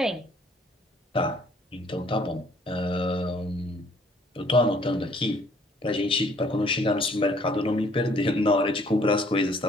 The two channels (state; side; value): normal; both; correlation 0.60